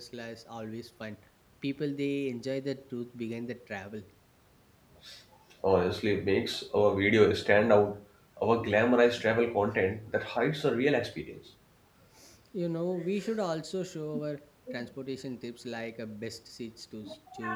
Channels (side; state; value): both; identical; correlation 1.00